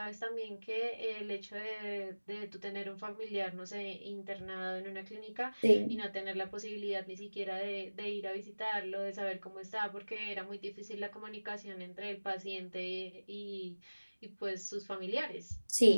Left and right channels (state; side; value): inverted; both; correlation -1.00